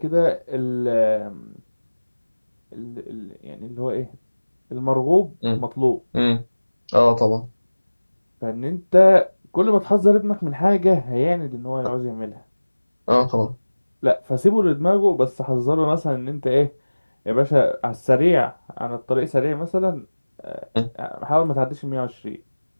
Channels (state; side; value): inverted; both; correlation -1.00